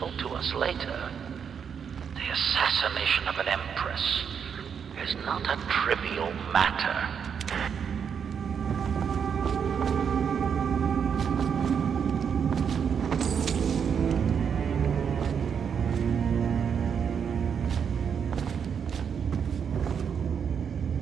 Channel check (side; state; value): left; quieter; 7.2 dB